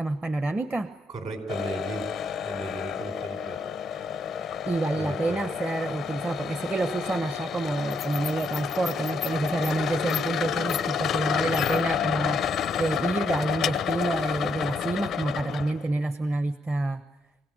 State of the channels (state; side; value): normal; both; correlation 0.76